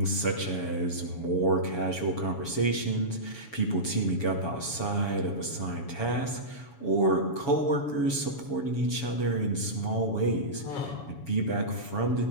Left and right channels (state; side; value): late; right; 7.1 ms